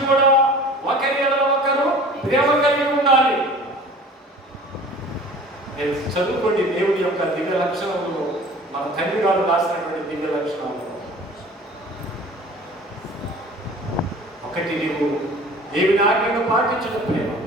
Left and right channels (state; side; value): normal; both; correlation 0.44